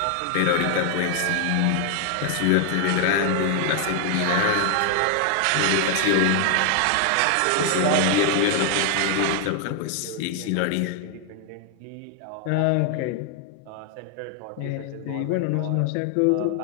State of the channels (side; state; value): both; different; correlation 0.00